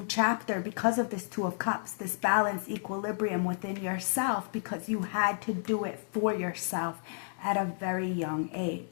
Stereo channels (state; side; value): silent; right; 57 dB below the other